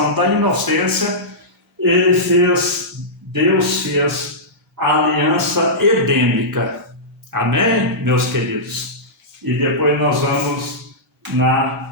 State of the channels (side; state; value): both; normal; correlation -0.14